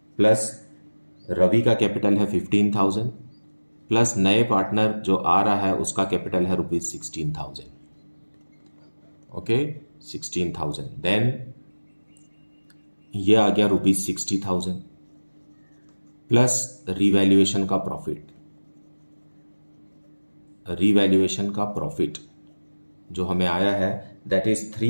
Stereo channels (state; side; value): inverted; both; correlation -1.00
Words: प्लस रवि का कैपिटल है 15,000 प्लस नए पार्टनर जो आ रहा है उसका कैपिटल है ₹16,000. ओके, 16,000. देन ये आ गया ₹60,000 प्लस रिवैल्यूएशन का प्रॉफिट जो हमें आया है दैट इज